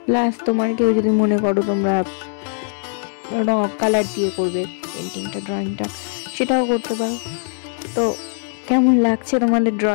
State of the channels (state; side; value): silent; right; 65 dB below the other